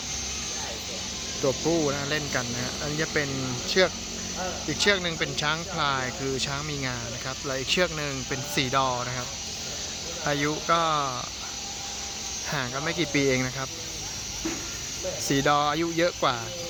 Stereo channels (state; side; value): identical; both; correlation 1.00